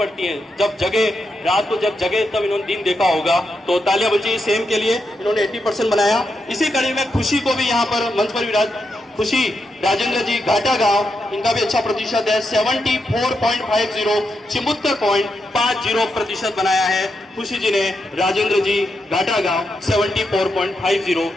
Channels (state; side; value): normal; both; correlation 0.84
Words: हैं। जब जगे, रात को जब जगे तब इन्होंने दिन देखा होगा, तो तालियां बन चाहिए सेम के लिए। इन्होंने 80% बनाया। इसी कड़ी में खुशी को भी यहाँ पर मंच पर विराज, खुशी राजेंद्र जी घाटा गांव, इनका भी अच्छा प्रतिशत है 74.50, 74.50% बनाया है खुशी जी ने। राजेंद्र जी घाटा गांव 74.50।